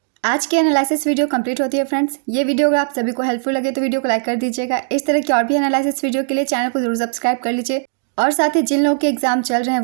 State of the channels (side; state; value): left; silent; digital silence